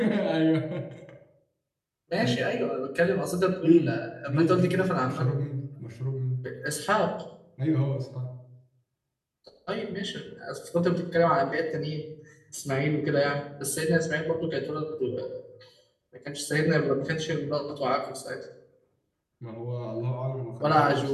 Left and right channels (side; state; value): both; identical; correlation 1.00